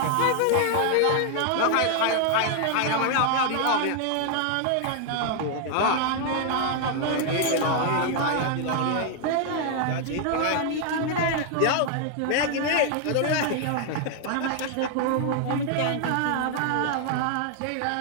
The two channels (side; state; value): both; different; correlation 0.00